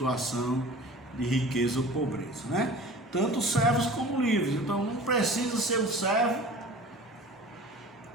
de riqueza ou pobreza, né? Tanto servos como livres. Então não precisa ser um servo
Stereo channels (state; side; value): normal; both; correlation 0.41